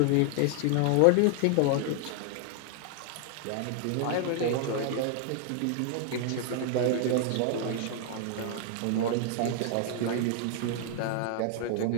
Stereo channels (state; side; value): different; both; correlation 0.00